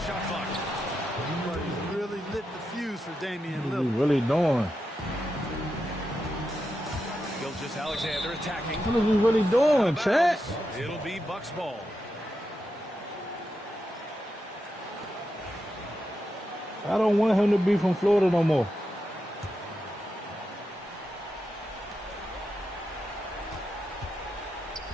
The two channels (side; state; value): both; normal; correlation 0.87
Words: clock. He really lit the fuse for Damian What Lillard. are you really doing? Gilgeous-Alexander attacking. What are we really doing, chat? It'll be Bucks ball. I don't want him to be from Florida no more.